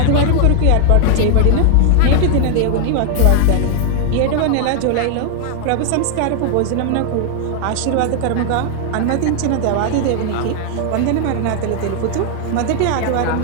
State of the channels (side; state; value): both; different; correlation 0.00